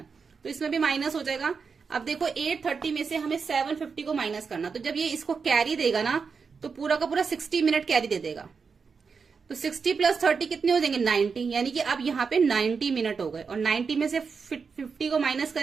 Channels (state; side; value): quieter; left; 5.4 dB